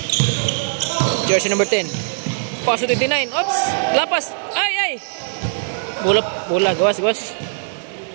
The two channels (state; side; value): silent; left; digital silence